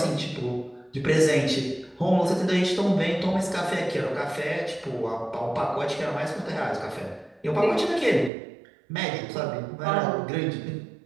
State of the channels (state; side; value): drops out; left; at 8.3 s